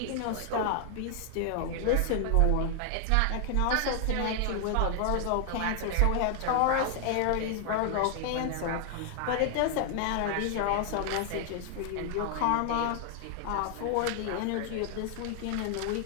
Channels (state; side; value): different; both; correlation 0.00